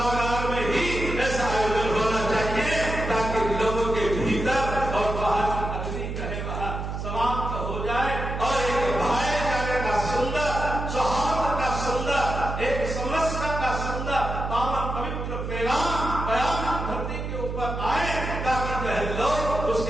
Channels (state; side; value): noise; right; hum, 5 dB below the sound